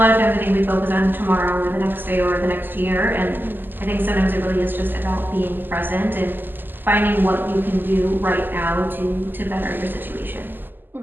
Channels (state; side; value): late; left; 0.092 ms